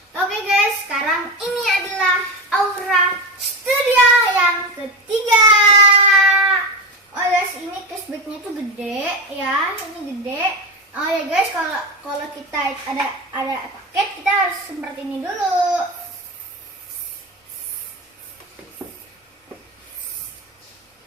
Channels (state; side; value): normal; both; correlation 0.18